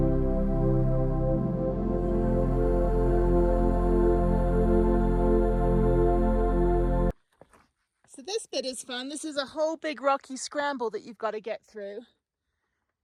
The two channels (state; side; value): identical; both; correlation 1.00